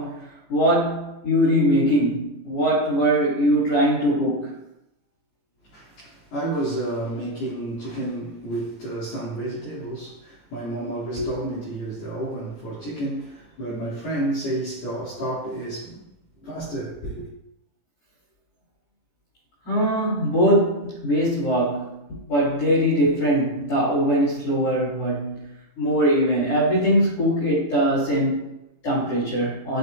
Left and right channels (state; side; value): late; right; 18 ms